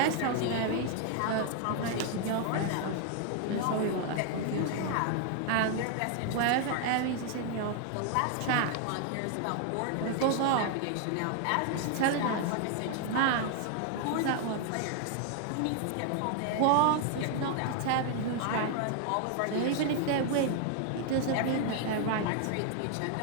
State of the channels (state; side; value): different; both; correlation 0.00